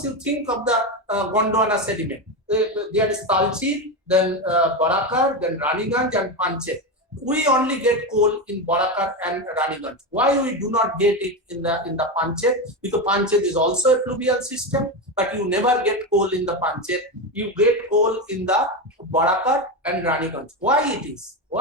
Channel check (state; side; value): normal; both; correlation 0.15